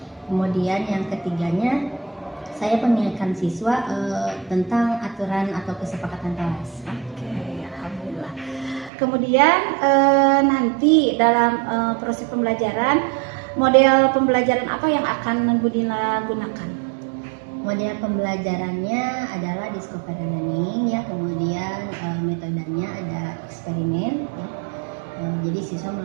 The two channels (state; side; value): drops out; left; at 8.9 s